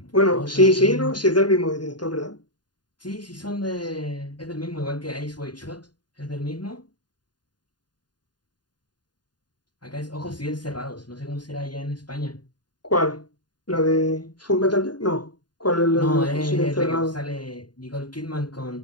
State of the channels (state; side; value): late; right; 0.70 ms